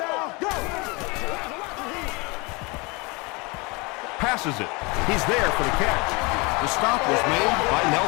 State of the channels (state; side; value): quieter; right; 27.4 dB